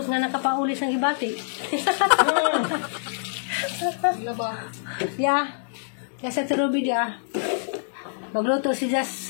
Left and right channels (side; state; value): right; silent; digital silence